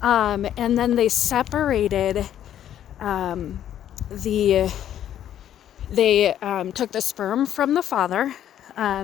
And then they separated they took the sperm from the father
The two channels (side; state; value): right; quieter; 10.8 dB